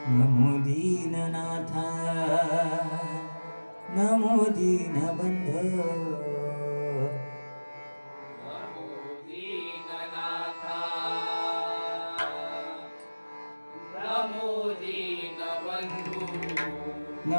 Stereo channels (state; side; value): inverted; both; correlation -1.00